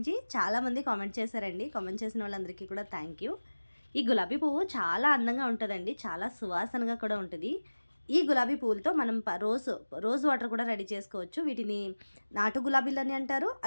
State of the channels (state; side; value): inverted; both; correlation -1.00